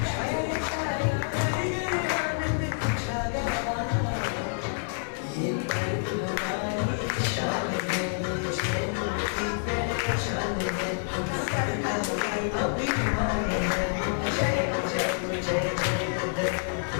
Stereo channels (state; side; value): silent; right; digital silence